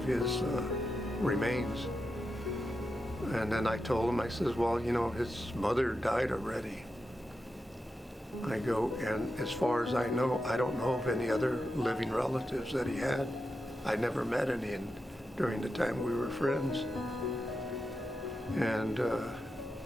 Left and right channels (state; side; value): normal; both; correlation 0.89